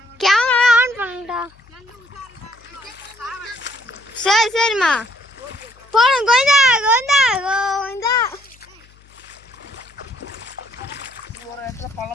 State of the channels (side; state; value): left; noise; hum, 28 dB below the sound